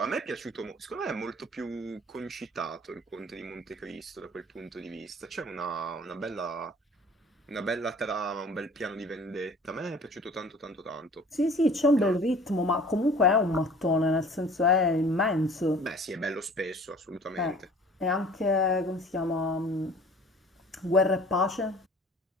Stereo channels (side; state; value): both; normal; correlation 0.48